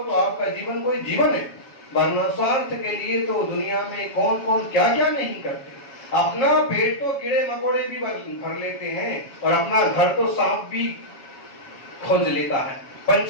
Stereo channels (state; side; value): late; right; 7.3 ms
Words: तो आपका जीवन कोई जीवन है। वरना स्वार्थ के लिए तो दुनिया में कौन कौन क्या क्या नहीं करते। अपना पेट तो कीड़े मकोड़े भी भर लेते हैं, और अपना घर तो सांप भी खोज लेता है,